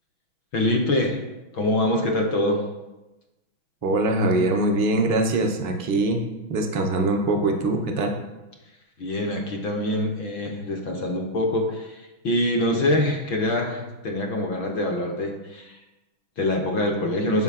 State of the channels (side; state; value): right; late; 6.1 ms